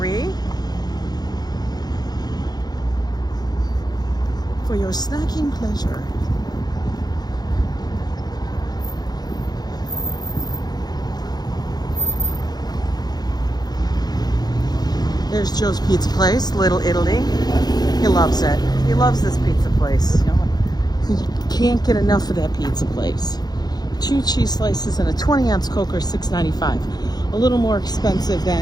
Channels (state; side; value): late; right; 0.19 ms